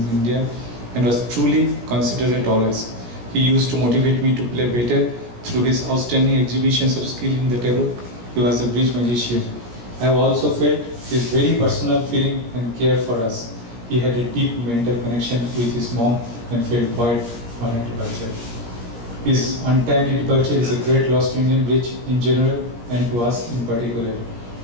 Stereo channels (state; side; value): late; left; 17 ms